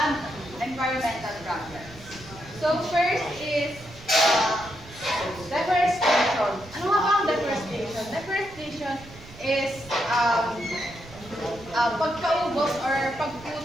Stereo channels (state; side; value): noise; right; rumble, 19 dB below the sound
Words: environmental programs. So first is deforestation. Ano nga ba ang deforestation? Deforestation is pagkaubos or